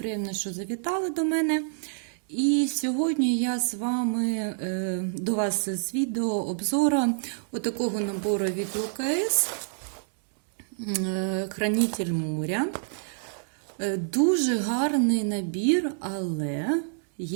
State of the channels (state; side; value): silent; left; digital silence